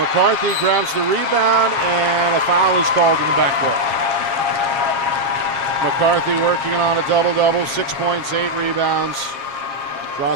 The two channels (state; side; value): late; left; 7.4 ms